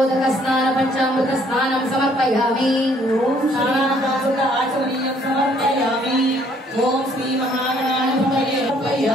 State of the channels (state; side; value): normal; both; correlation 0.63